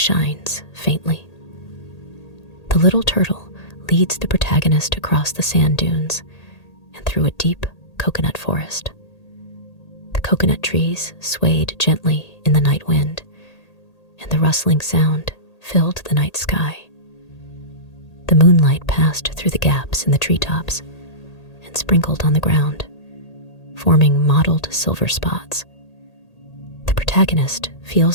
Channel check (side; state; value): right; late; 1.8 ms